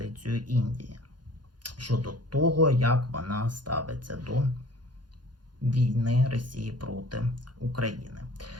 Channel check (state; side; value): late; left; 0.70 ms